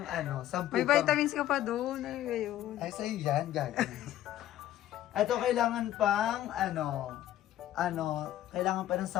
10 May vitamins ka pa doon. Ay, yun. Ay, sa'yo yan, gagawin. Ito, kailangan pang, kailangan pa ng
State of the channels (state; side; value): quieter; right; 13.0 dB